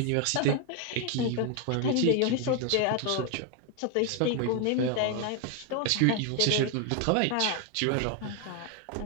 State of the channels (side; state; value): both; different; correlation 0.01